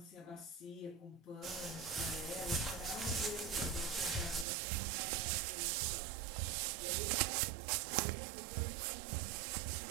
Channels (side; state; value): left; drops out; at 4.5 s